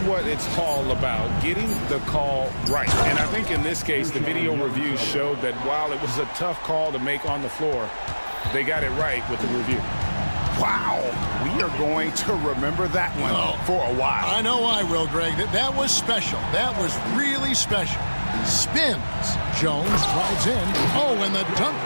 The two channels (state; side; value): inverted; both; correlation -1.00